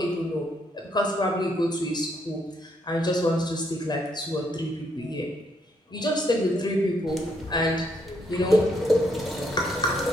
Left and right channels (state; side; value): normal; both; correlation 0.74